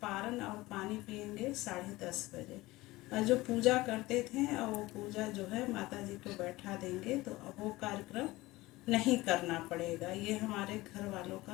पारण और पानी पिएंगे 10:30 बजे। और जो पूजा करते थे और वो पूजा जो है माता जी को बैठा देंगे। तो अब वो कार्यक्रम नहीं करना पड़ेगा। ये हमारे घर वालों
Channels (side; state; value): right; quieter; 19.5 dB